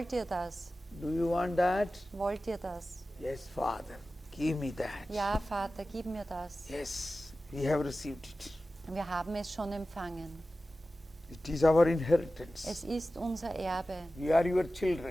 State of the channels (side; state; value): both; normal; correlation 0.95